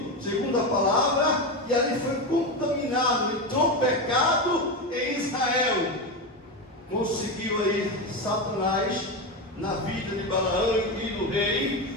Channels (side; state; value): both; normal; correlation 0.16